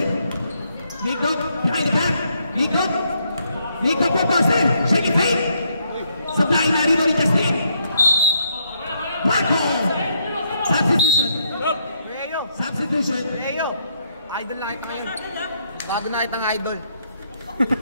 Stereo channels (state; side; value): inverted; both; correlation -0.75